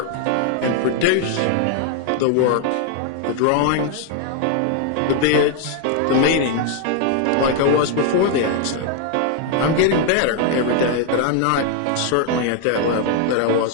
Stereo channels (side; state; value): both; different; correlation 0.00